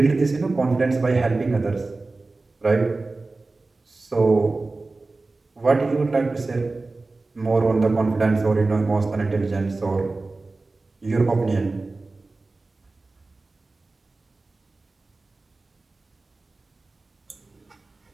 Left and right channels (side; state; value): left; quieter; 3.4 dB